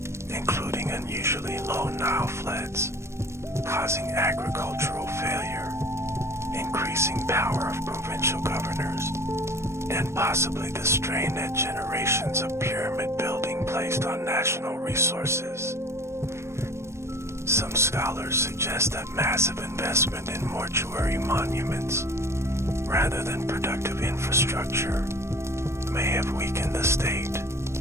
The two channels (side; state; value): left; late; 0.13 ms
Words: including unusually low Nile floods, causing agricultural failure, increasing power of provincial governors, and possibly the strain that generations of pyramid building placed on national resources. Some scholars suggest that massive investment in mortuary monuments, rather than productive infrastructure, may have weakened the state.